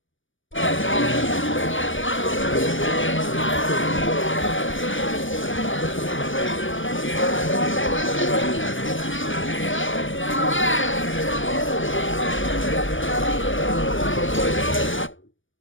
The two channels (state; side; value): late; right; 0.57 ms